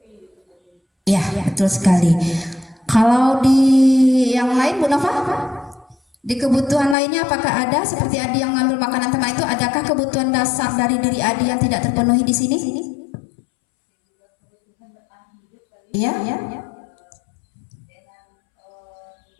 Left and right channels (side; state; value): right; drops out; at 7.0 s